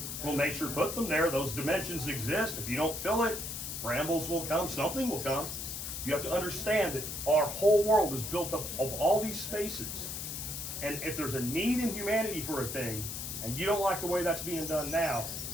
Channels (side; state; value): left; noise; hiss, 5 dB below the sound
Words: Well, nature put them there. Those dimensions exist. If you don't fill it, brambles will come, something will come. You have to understand that our whole world is built up of all these spaces. And if there's a need in humanity for a thing, and you don't like the way that's being done now,